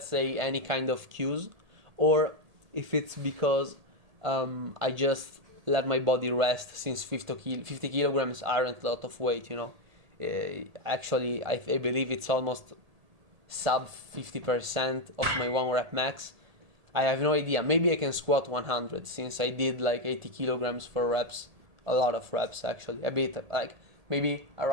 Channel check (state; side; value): late; left; 1.7 ms